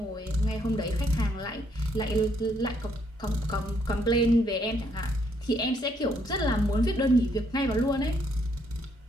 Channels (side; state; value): both; normal; correlation 0.71